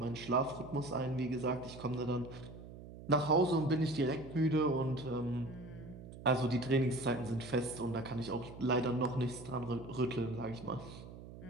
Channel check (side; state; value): right; noise; hum, 14 dB below the sound